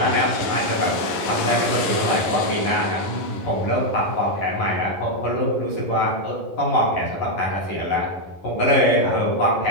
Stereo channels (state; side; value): late; right; 11 ms